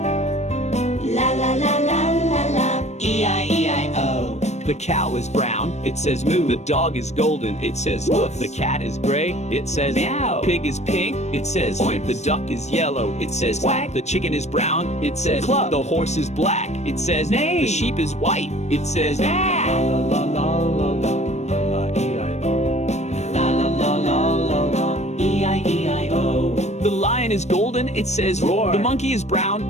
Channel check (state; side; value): late; right; 0.32 ms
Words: La la la la la la, E-I-E-I-O. The cow is brown, it says moo. The dog is golden, it says woof. The cat is gray, it says meow. Pig is pink, it says oink. The duck is yellow, it says quack. The chicken is brown, it says cluck. The horse is black, it says neigh. The sheep is white, it says ah. La la la la la la, E-I-O. La la la la la la, E-I-E-I-O. The lion is golden, it says roar. The monkey is